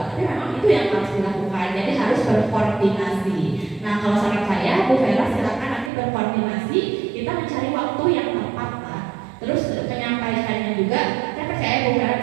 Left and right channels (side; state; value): left; drops out; at 5.9 s